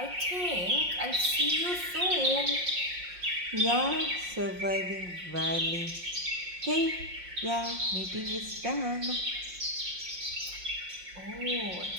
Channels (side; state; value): left; late; 5.6 ms